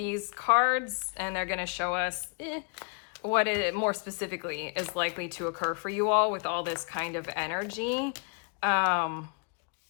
cards and they're going to show us what it more specifically is likely to occur for you all with all this kind of energy.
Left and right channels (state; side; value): quieter; right; 38.5 dB